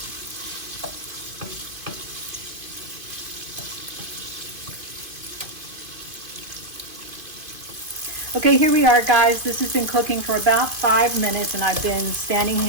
Okay, here we are, guys. This has been cooking for about 5 minutes, and I've been standing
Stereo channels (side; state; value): left; late; 2.5 ms